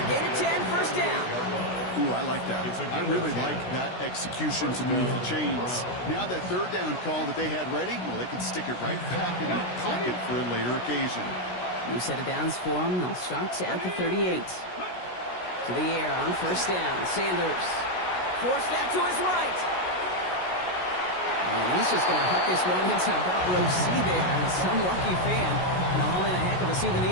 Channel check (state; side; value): late; right; 16 ms